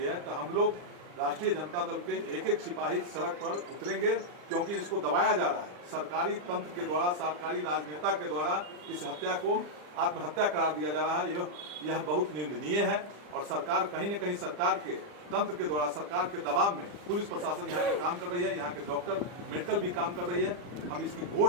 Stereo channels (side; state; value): left; late; 40 ms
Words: है, तो हम लोग राष्ट्रीय जनता दल के एक एक सिपाही सड़क पर उतरेंगे, क्योंकि इसको दबाया जा रहा है। सरकारी तंत्र के द्वारा, सरकारी राजनेता के द्वारा इस हत्या को आत्महत्या करार दिया जा रहा है। यह बहुत निंदनीय है और सरकार कहीं न कहीं सरकार के तंत्र के द्वारा, सरकार के दबाव में पुलिस प्रशासन यहाँ पे काम कर रही है, यहाँ के डॉक्टर मेडिकल भी काम कर रही है। हम इसकी